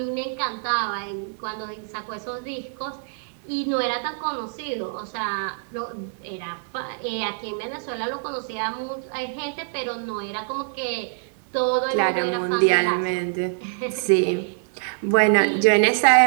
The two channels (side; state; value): left; silent; digital silence